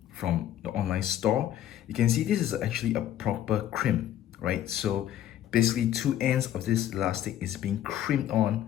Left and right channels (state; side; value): quieter; right; 11.6 dB